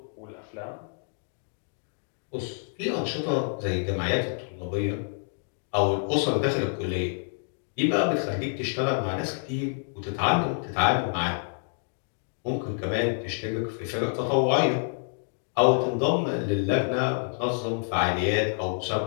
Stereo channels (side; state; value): right; silent; digital silence